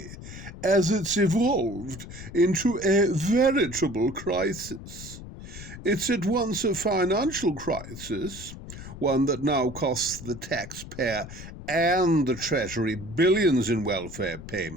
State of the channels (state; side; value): noise; left; rumble, 13 dB below the sound